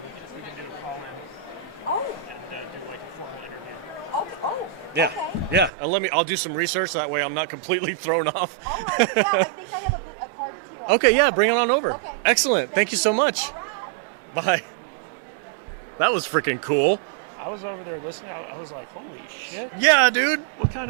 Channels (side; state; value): left; drops out; at 5.7 s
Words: We can do a call in Oh. and do like a formal interview. Okay. Oh. Yeah. Okay. Yeah. And I'll do some research. That way I'm not completely thrown off. All right. Yeah, I think I have a card too. Okay. Yeah. Bring it on over. Okay. Excellent. Thank you so much. All right. Bye. That was freaking cool. I was over there listening. I was like, holy shit. Yeah, dude. What